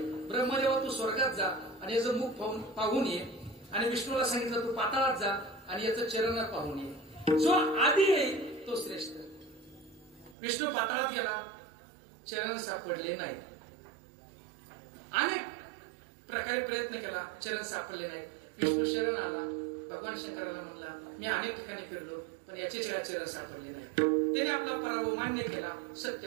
ब्रह्मदेवा तू स्वर्गात जा आणि याचं मुख पाहून ये. आणि विष्णूला सांगितलं तू पाताळात जा आणि याचं चरण पाहून ये. जो आधी येईल तो श्रेष्ठ. विष्णू पाताळात गेला, चरण सापडले नाहीत. अनेक प्रकारे प्रयत्न केला, चरण सापडले नाहीत. विष्णू शरण आला. भगवान शंकराला म्हणला मी अनेक ठिकाणी फिरलो पण याचे चरण सापडले नाही. त्याने आपला पराभव मान्य केला,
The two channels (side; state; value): left; drops out; at 10.4 s